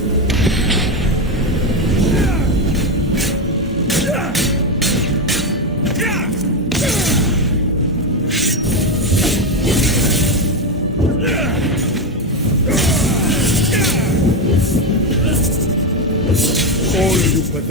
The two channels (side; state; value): both; normal; correlation 0.10